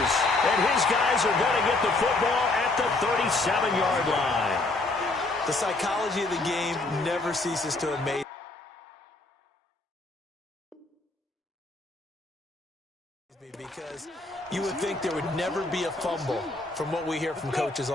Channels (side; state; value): right; quieter; 3.1 dB